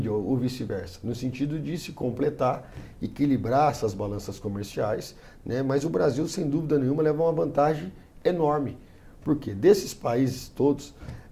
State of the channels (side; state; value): both; identical; correlation 1.00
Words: ou vice-versa, no sentido de se completar, equilibrar essas balanças comerciais, né? Mas o Brasil, sem dúvida nenhuma, leva uma vantagem enorme, porque desses países todos,